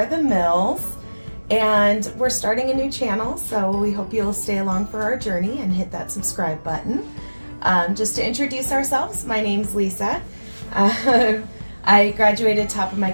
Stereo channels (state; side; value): inverted; both; correlation -1.00